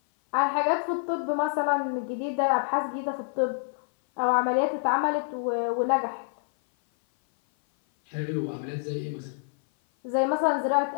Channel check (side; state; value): right; silent; 57 dB below the other